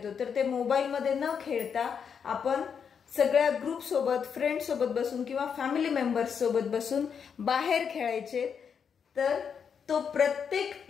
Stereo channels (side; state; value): right; quieter; 6.9 dB